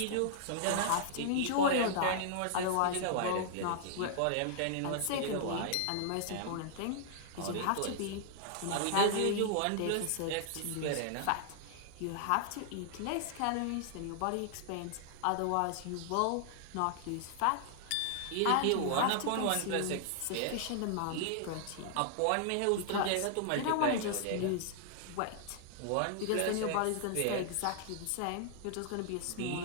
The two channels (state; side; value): different; both; correlation -0.01